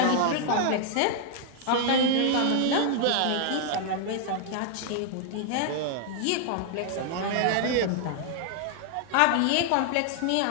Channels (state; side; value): different; both; correlation 0.00